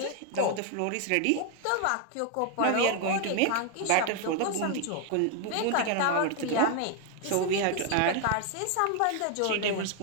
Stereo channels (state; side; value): different; both; correlation 0.00